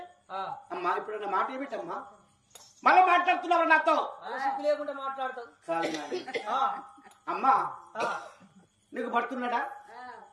అమ్మా ఇప్పుడు మాట ఏమిటమ్మా మళ్ళీ మాట్లాడుతున్నావు నాతో లేకుండా మాట్లాడతావు అమ్మా నీకు భర్తున్నాడా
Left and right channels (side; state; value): both; identical; correlation 1.00